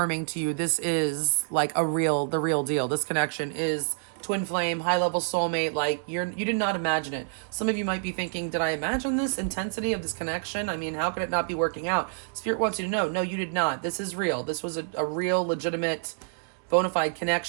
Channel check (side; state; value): left; silent; digital silence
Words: to you this is like the real deal. This connection is twin flame, high level soulmate. Like you did not imagine it. Some of you might be thinking, did I imagine this intensity of this connection? How could it not be working out? Spirit wants you to know, no, you did not. This is real. This was a real legitimate bona fide